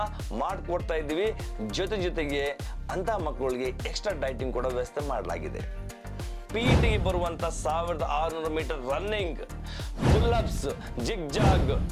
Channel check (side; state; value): both; identical; correlation 1.00